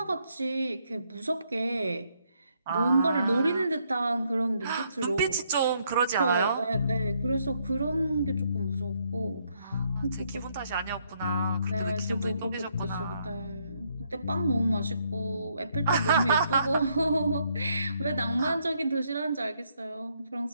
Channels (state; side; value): inverted; both; correlation -0.73